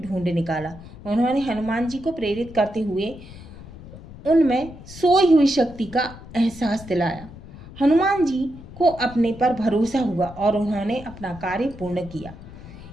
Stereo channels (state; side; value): noise; left; rumble, 16 dB below the sound